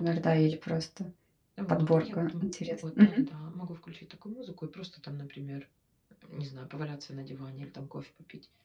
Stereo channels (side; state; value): both; identical; correlation 1.00